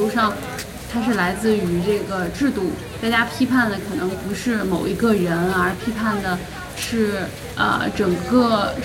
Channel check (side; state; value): both; identical; correlation 1.00